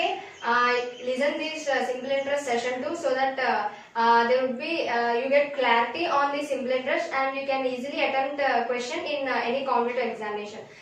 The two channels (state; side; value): identical; both; correlation 1.00